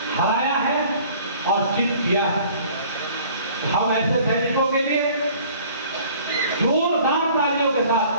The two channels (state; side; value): inverted; both; correlation -0.52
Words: हराया है और जीत किया है। हम ऐसे सैनिकों के लिए जोरदार तालियों के साथ,